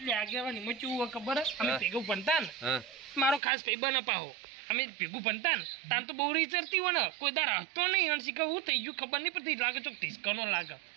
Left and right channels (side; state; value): left; drops out; at 3.4 s